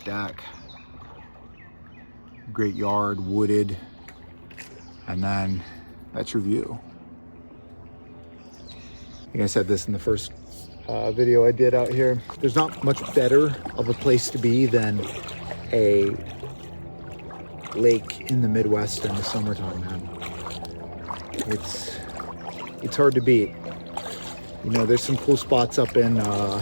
deck. Great yard, wooded, and then that's your view. I think I said this in the first video I did out here. There's not much better of a place to be than a lake in the Midwest in the summertime, man. It's hard to beat. You know, there's some cool spots up in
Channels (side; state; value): both; inverted; correlation -1.00